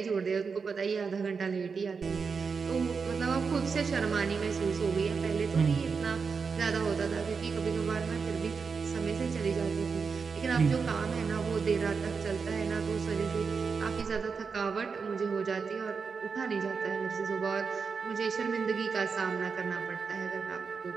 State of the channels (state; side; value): quieter; left; 5.3 dB